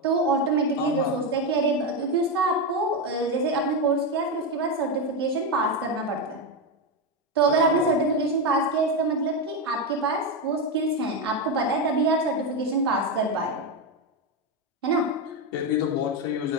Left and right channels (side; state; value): both; normal; correlation 0.10